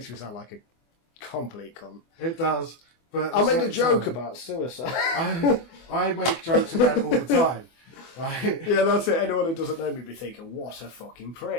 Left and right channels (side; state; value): right; late; 24 ms